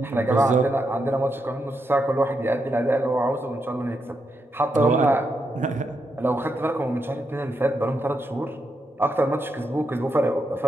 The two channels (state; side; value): normal; both; correlation 0.83